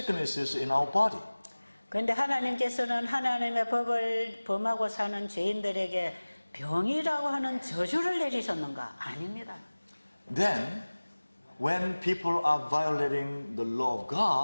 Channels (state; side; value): inverted; both; correlation -1.00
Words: in our body. 그런데 하나님께서는 하나님의 법을 범하고 사는 죄인들에게 병이라고 하는 저주를 내리셨는가? 아닙니다. Then, when people are violating the law of